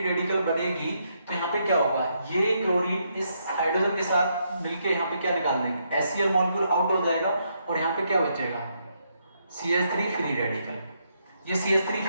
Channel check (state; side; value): inverted; both; correlation -0.77